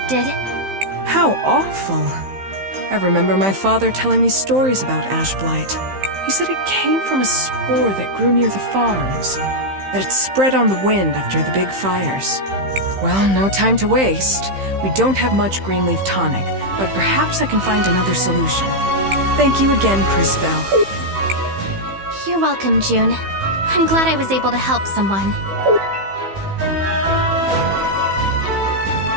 How awful. I remember my father telling me stories about ash blight. He said it came from a spore that grew near the farms, that it spread on the wind after the big fires. Well, no time to waste. We don't have much green leaf tonic, but perhaps I can find another solution. Thank you again, Crisbell. You're welcome, June. I'm glad I was able to help someone.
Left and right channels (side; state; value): left; late; 15 ms